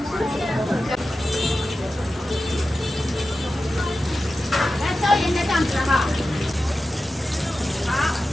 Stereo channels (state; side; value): normal; both; correlation 0.93